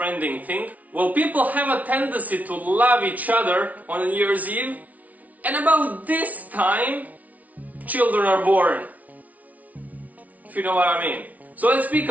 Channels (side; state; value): left; late; 0.072 ms